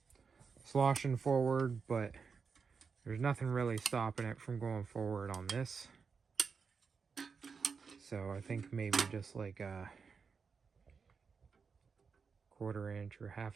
sloshing forward, but there's nothing really stopping it from going forward on this. So I think maybe just like a 1/4 inch or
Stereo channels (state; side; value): quieter; left; 5.5 dB